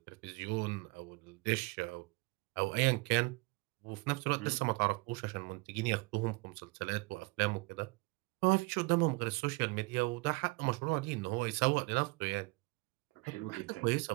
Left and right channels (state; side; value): quieter; left; 26.1 dB